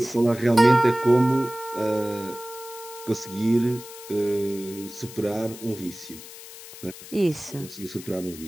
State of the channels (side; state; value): left; noise; hiss, 15 dB below the sound